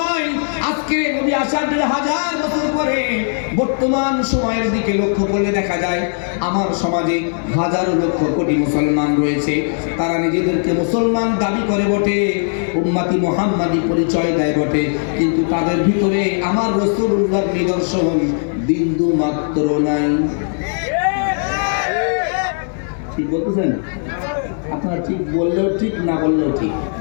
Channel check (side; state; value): right; silent; digital silence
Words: আজকে নবী আসার 1000 বছর পরে বর্তমান সময়ের দিকে লক্ষ্য করলে দেখা যায় আমার সমাজে হাজারো লক্ষ কোটি মুসলমান রয়েছে। তারা নিজেদেরকে মুসলমান দাবি করে বটে, উম্মতি মুহাম্মাদি পরিচয় দেয় বটে, কিন্তু তাদের ভিতরে আমার রাসূলুল্লাহর নিদর্শন বিন্দু মাত্র নাই। ঠিক বলতেছেন? আপনারা ঠিক বললেও ঠিক, না বললেও ঠিক।